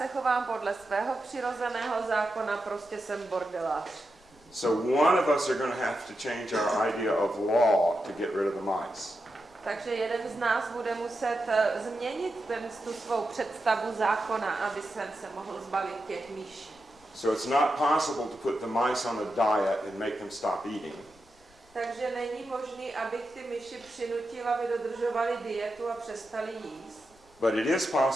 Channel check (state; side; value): noise; left; rumble, 29 dB below the sound